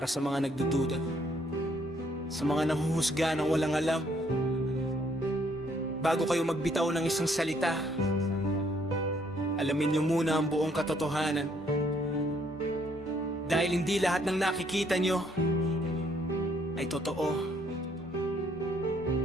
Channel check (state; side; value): normal; both; correlation 0.67